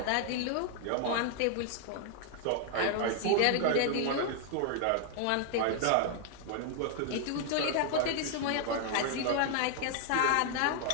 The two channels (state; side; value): different; both; correlation 0.00